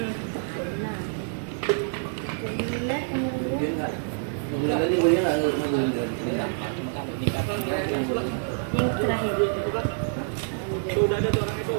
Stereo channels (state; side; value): silent; left; digital silence